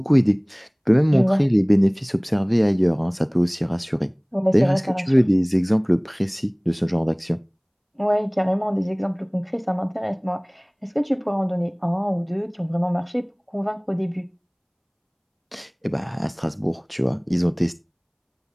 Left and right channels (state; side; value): identical; both; correlation 1.00